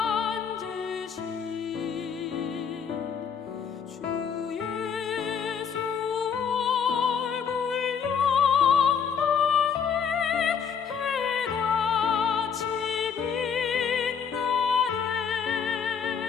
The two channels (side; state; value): right; quieter; 7.0 dB